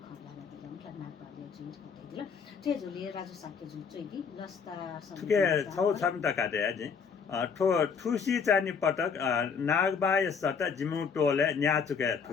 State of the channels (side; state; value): right; quieter; 6.1 dB